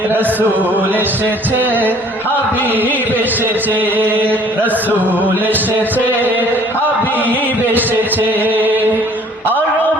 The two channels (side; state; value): both; normal; correlation 0.55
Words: রসূল এসেছে, হাবিব এসেছে, রসূল এসেছে, হাবিব এসেছে।